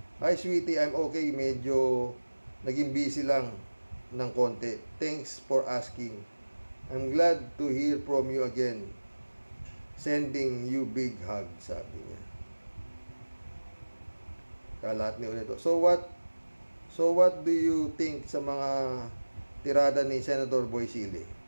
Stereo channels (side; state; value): both; inverted; correlation -1.00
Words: Hi, sweetie, I'm okay. Medyo naging busy lang ng konti. Thanks for asking. I'm glad to hear from you again. Sending you big hug, sabi niya. Kalat ni ulit. So what do you think sa mga tirada ni Senator Boisili?